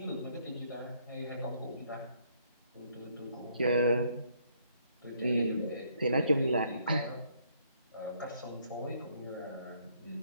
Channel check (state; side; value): inverted; both; correlation -0.68